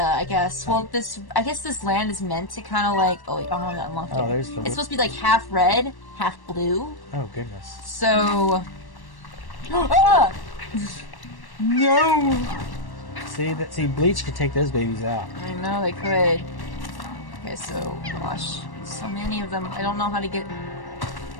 I guess. Well, I guess this land is meant to kind of like. Oh, wait, I haven't unlocked it. Oh, there's the. It's supposed to be like half red, half blue. Oh goodness. So. Ah! No. See, bleach could take those babies out. I know they could. Okay, so gosh, so many of them. I don't know how to get.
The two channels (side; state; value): right; late; 1.1 ms